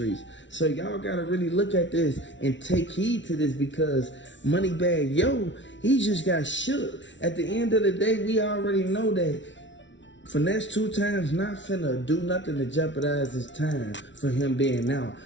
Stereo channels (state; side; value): late; right; 0.54 ms